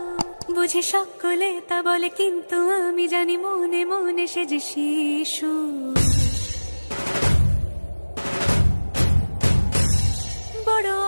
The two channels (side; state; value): both; inverted; correlation -1.00